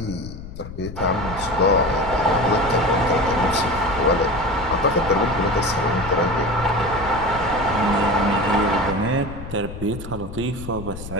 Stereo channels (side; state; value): left; noise; rumble, 12 dB below the sound